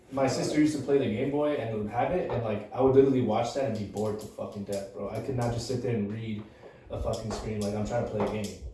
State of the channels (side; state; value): both; identical; correlation 1.00